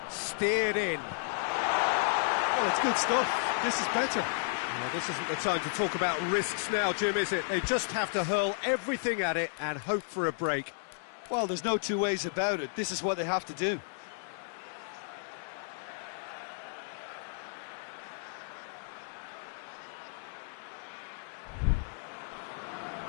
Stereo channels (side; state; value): right; silent; digital silence